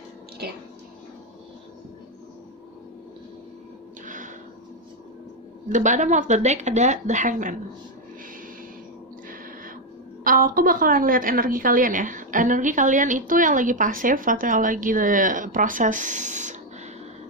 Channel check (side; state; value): both; normal; correlation 0.04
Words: Okay. The bottom of the deck ada the Hangman. Aku bakalan lihat energi kalian ya. Energi kalian itu yang lagi pasif atau yang lagi proses